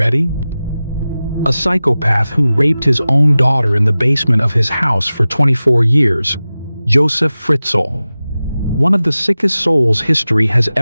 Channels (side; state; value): both; inverted; correlation -0.96